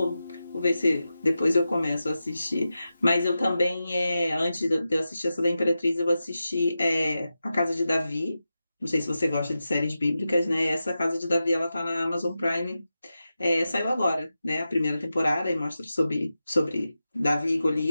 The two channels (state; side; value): inverted; both; correlation -0.91